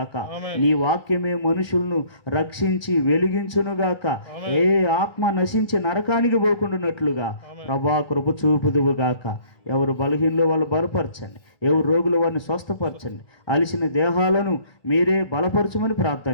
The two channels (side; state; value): right; late; 1.2 ms